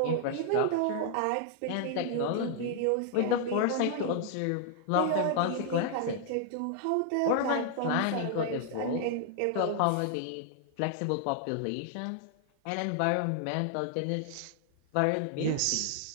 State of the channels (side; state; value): both; different; correlation 0.00